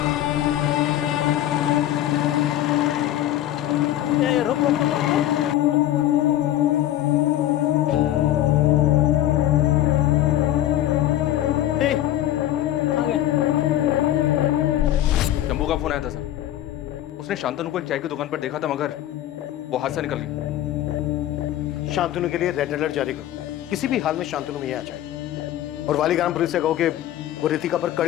रुक रुक शंभू का फोन आया था सर। उसने शांतनु को एक चाय की दुकान पर देखा था, मगर वो हाथ से निकल गई। शांतनु के लिए रेड अलर्ट जारी करो। किसी भी हाल में शांतनु में आ जाए और वालीग्राम पुलिस से कहो कि वो रितिका पर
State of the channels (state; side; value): quieter; right; 13.1 dB